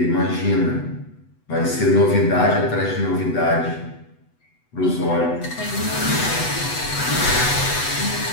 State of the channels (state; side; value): late; right; 8.0 ms